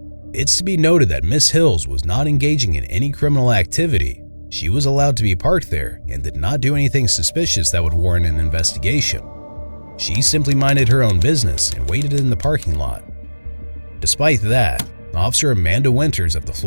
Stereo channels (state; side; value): inverted; both; correlation -1.00